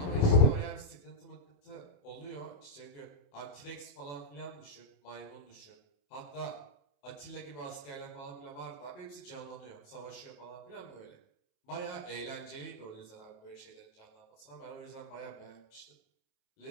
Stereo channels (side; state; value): right; late; 28 ms